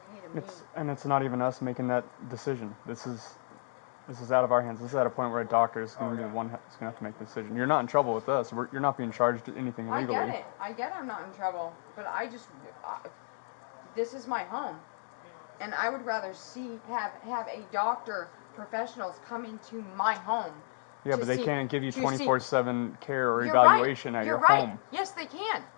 to me. It's not even us making that decision. This is out of our hands. This is at a point where a doctor is going to be the one that's going to have to make the decision. You're not in trouble with us. You're not being charged anything legally. I get I'm not in trouble, but this is my home, and I would rather have a doctor, professionals come into my home. Yeah, but they can't give you 24/7 care or You're evaluation right. at your You're right. home. Yes, they can,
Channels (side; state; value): right; silent; digital silence